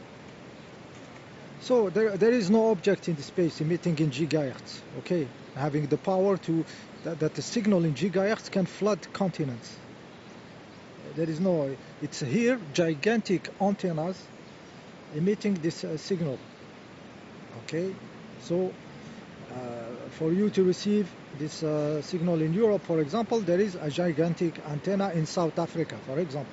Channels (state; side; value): identical; both; correlation 1.00